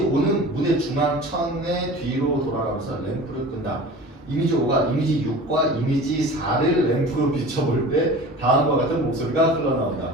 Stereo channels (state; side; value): normal; both; correlation 0.38